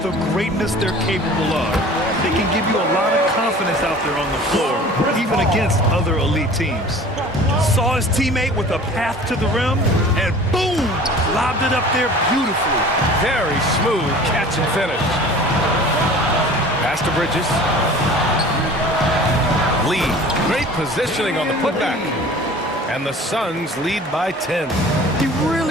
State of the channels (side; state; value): both; normal; correlation 0.44